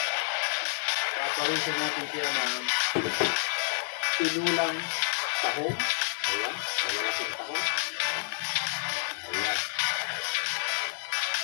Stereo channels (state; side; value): silent; right; digital silence